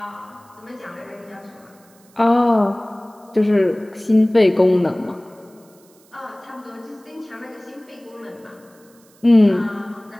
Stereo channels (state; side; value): noise; right; hiss, 30 dB below the sound